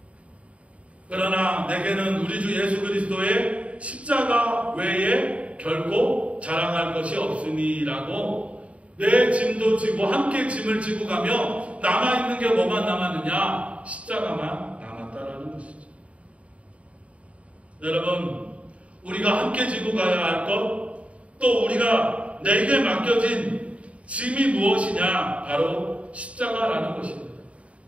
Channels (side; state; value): left; late; 0.064 ms